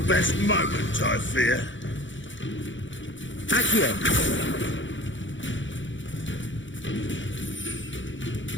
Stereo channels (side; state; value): right; late; 0.55 ms